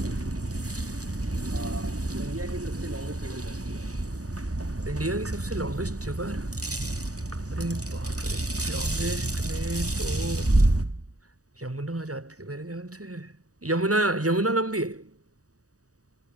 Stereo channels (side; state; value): left; late; 0.66 ms